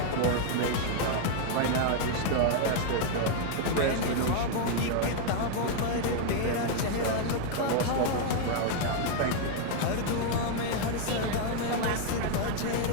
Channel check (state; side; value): different; both; correlation 0.00